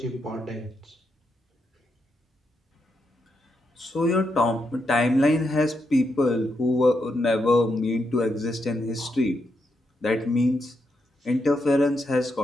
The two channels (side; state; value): both; normal; correlation 0.82